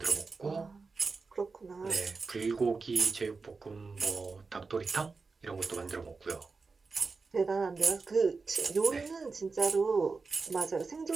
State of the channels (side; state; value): left; quieter; 4.3 dB